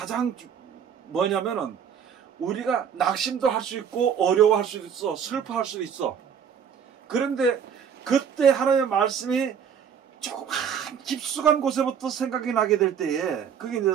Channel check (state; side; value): quieter; left; 7.7 dB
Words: 뭐냐면은 우리가 낙심도 할 수 있고 어려워할 수도 있어. 슬퍼할 수도 있어. 그런데 그때 하나님의 말씀이 조금 깊숙한 곳에부터 생각이 나게 될 때에 그게 이제